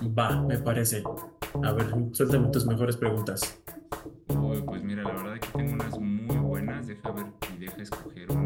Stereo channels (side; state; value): both; identical; correlation 1.00